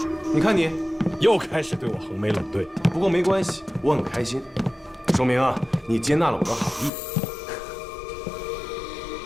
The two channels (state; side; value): drops out; right; at 6.9 s